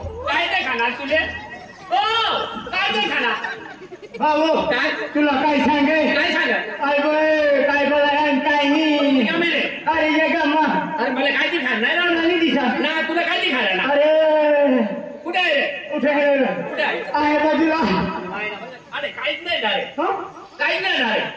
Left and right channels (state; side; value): identical; both; correlation 1.00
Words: काय ते खाणार तुले ओ काय ते खाणार भाऊ काय तुला काय सांगे अरे काय बोलायन काय नाही अरे ये गम्मा अरे मला काय ते खाणार नाही दिसा ना तुला काय ते खाणार ना अरे कुठे आहे कुठे आहे बाजूला अरे काहीच नाही डायरेक्ट काहीच नाही